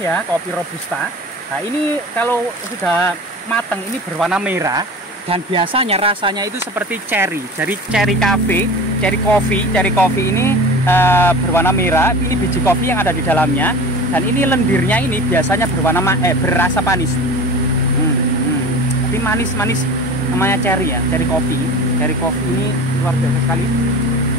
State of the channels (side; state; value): both; normal; correlation 0.35